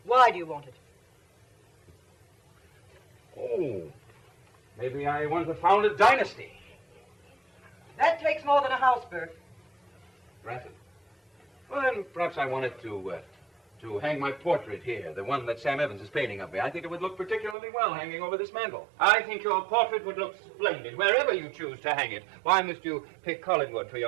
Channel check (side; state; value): left; drops out; at 17.6 s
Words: Why do you want it? Oh, maybe I want to found a dynasty. That takes more than a house, Bert. Granted. Well, then perhaps I wanted to hang my portrait here, the one that Sam Evans is painting of me. I think it would look particularly well hanging over this mantel. I think your portrait would look splendid wherever you choose to hang it. Why must you pick Collinwood for